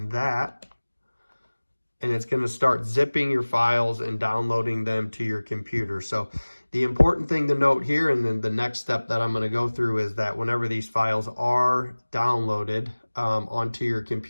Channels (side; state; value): both; inverted; correlation -1.00